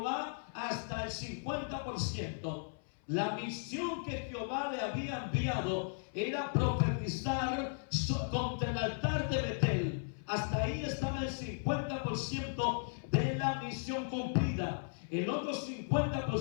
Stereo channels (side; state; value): right; silent; 54 dB below the other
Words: hasta el 50%. La misión que Jehová le había enviado era profetizar contra el altar de Betel. Hasta ahí estaba el 50% de la misión cumplida. El otro